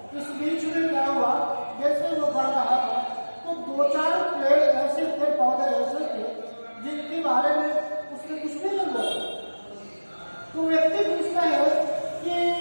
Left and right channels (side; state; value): both; inverted; correlation -1.00